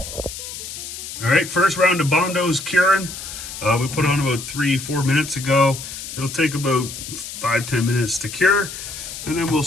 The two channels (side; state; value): left; noise; hiss, 10 dB below the sound